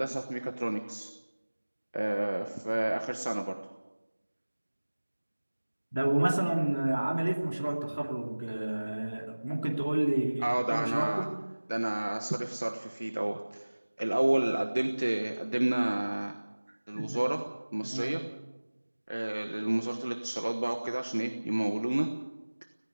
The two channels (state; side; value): inverted; both; correlation -1.00